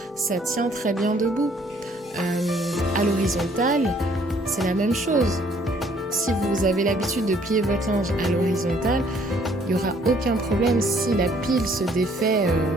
ça tient très bien debout. À l'horizontale, c'est la même chose. Si vous avez l'habitude de plier votre linge à l'horizontale, il n'y aura aucun problème si la pile se défait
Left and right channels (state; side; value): normal; both; correlation 0.62